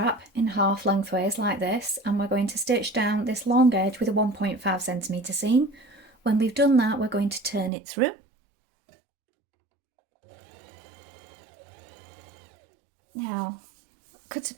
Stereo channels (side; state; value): left; drops out; at 7.7 s